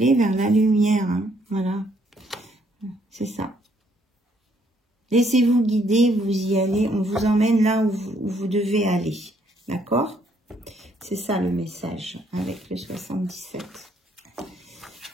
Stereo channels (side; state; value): both; normal; correlation 0.68